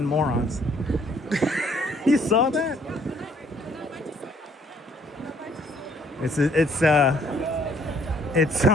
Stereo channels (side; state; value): both; normal; correlation 0.63